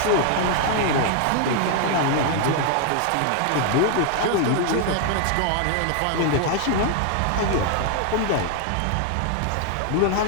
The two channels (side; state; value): both; different; correlation 0.00